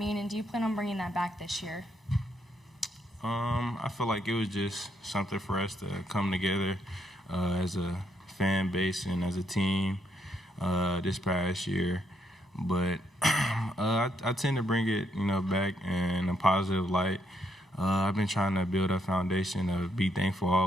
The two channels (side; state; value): both; normal; correlation 0.75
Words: and do you plan on bringing that back this year? I feel like it was just something for us to come together as a fan base and as a team this past year. But I tend to bring it, back in a positive light. I've been trying to build a foundation of be thankful